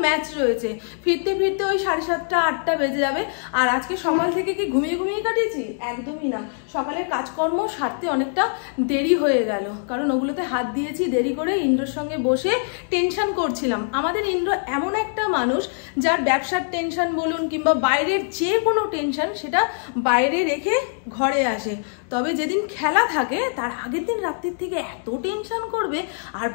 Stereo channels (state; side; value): silent; right; 63 dB below the other